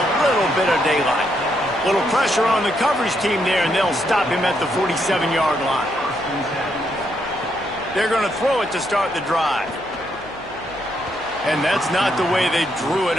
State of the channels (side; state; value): left; noise; hum, 23 dB below the sound